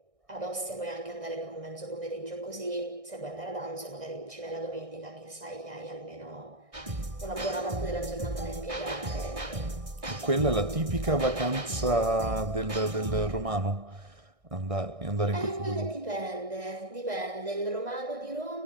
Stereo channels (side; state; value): left; late; 1.6 ms